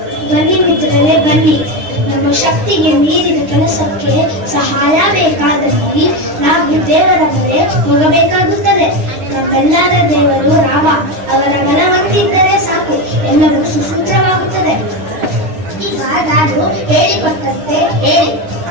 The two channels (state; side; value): late; left; 9.5 ms